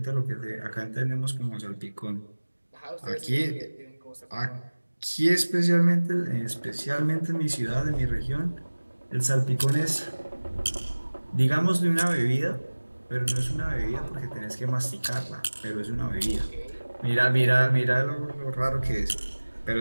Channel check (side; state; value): both; inverted; correlation -1.00